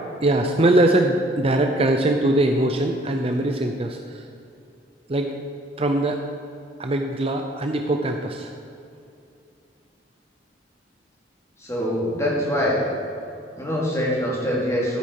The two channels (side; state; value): both; normal; correlation 0.56